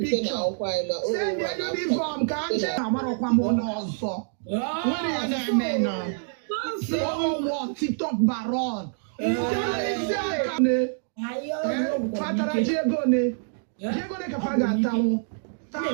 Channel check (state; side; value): silent; left; digital silence